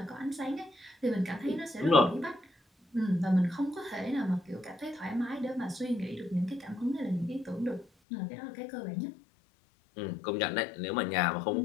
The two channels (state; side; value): drops out; right; at 7.9 s